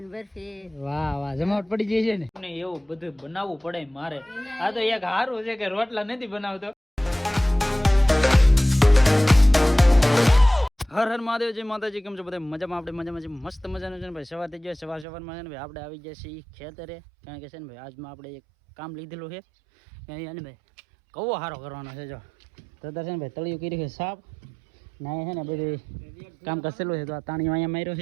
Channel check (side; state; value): left; drops out; at 15.1 s